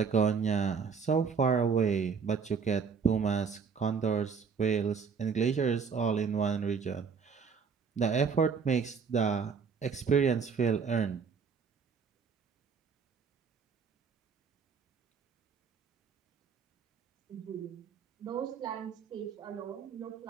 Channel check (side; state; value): left; quieter; 5.9 dB